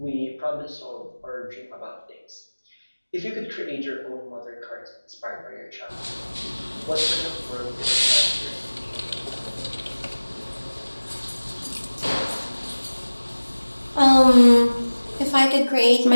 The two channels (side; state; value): both; inverted; correlation -1.00